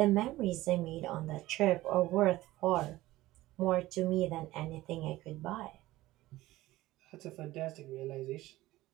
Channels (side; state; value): left; quieter; 17.2 dB